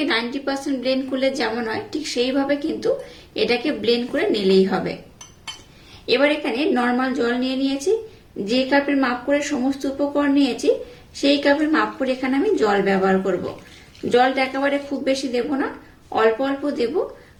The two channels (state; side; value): identical; both; correlation 1.00